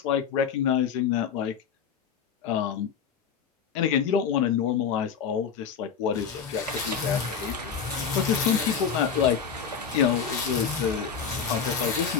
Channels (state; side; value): quieter; right; 6.9 dB